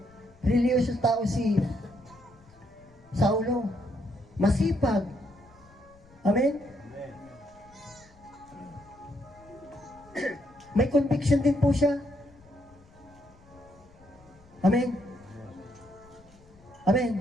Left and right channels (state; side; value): noise; left; rumble, 26 dB below the sound